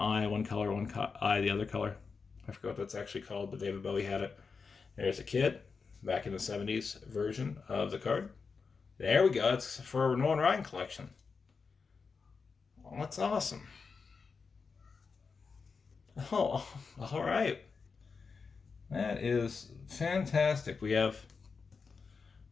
one color, one eye, the other color. I forgot what that's actually called, but David Bowie had it. There's a kid back in the 70s version of the card. There we go. It's for a Nolan Ryan collection. Oh, that's awesome. Oh, all right. That is fantastic. We have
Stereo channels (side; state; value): right; quieter; 5.0 dB